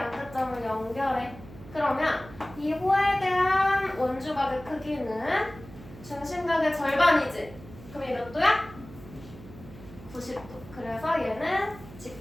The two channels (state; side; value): noise; right; hum, 17 dB below the sound